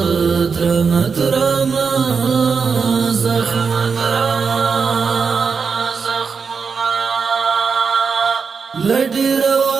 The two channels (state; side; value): quieter; left; 5.5 dB